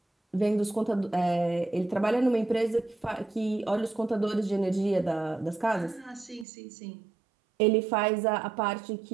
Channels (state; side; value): drops out; left; at 6.5 s